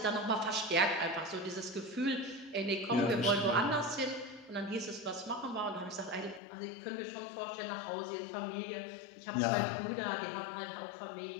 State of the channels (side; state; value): right; drops out; at 6.4 s